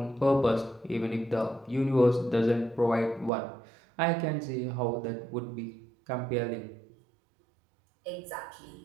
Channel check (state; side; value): drops out; left; at 3.3 s